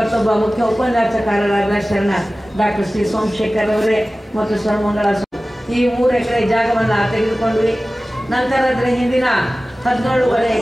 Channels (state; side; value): normal; both; correlation 0.96